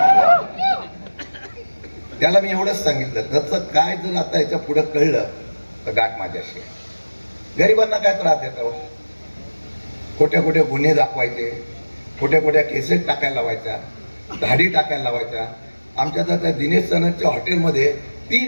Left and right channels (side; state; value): both; inverted; correlation -1.00